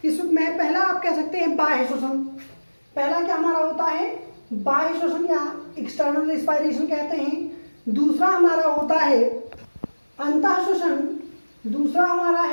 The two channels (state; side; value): inverted; both; correlation -1.00